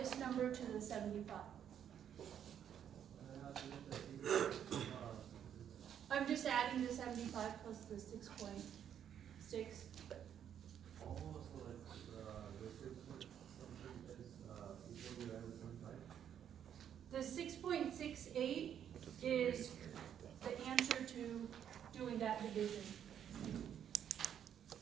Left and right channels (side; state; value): left; quieter; 9.3 dB